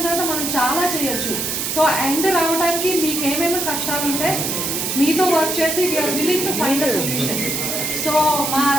తర్వాత మనం చాలా చేయొచ్చు. సో ఎండ్ రావడానికి మీకు ఏమేమి కష్టాలు ఉంటే మీతో వర్క్ చేసి we are willing to find a solution. So మా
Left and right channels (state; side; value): noise; right; hiss, 1 dB below the sound